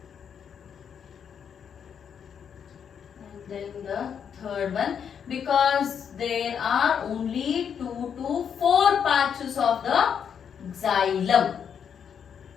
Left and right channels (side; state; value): right; quieter; 7.7 dB